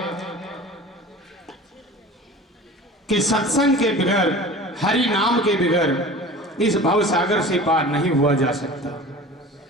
कि सत्संग के बगैर, हरि नाम के बगैर इस भव सागर से पार नहीं हुआ जा सकता।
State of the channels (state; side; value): normal; both; correlation 0.39